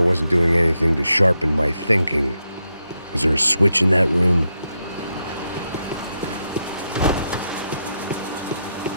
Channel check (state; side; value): inverted; both; correlation -0.84